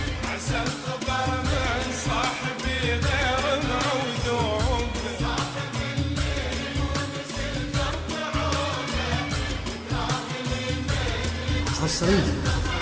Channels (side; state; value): both; identical; correlation 1.00